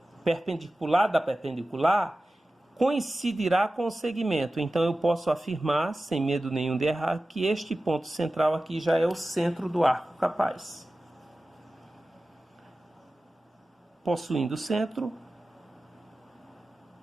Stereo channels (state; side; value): normal; both; correlation 0.95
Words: perpendicular da perpendicular, coincidirá com o segmento. Então eu posso afirmar, sem medo nenhum de errar, que este ponto central aqui já é o centro do arco capaz. Possuindo o centro,